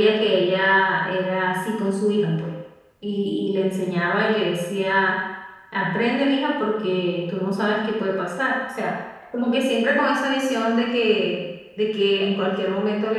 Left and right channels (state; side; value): identical; both; correlation 1.00